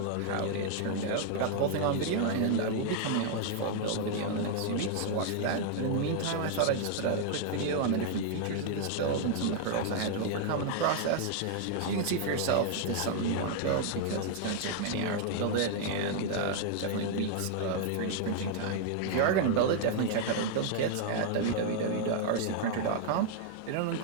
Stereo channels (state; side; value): different; both; correlation 0.00